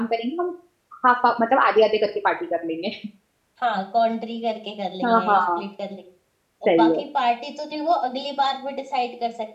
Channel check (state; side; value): identical; both; correlation 1.00